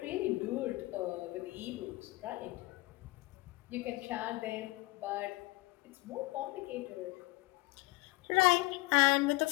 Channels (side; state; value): right; quieter; 22.1 dB